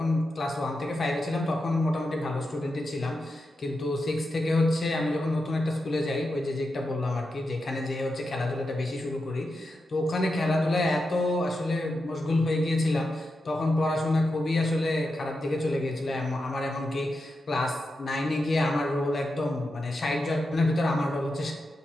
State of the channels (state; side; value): normal; both; correlation 0.88